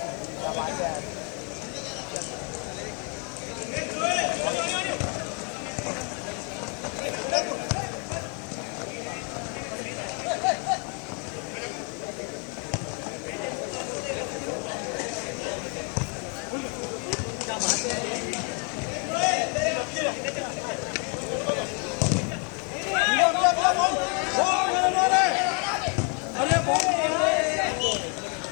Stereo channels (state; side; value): quieter; right; 36.8 dB